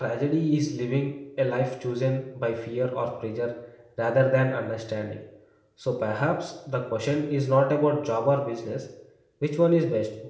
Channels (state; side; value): identical; both; correlation 1.00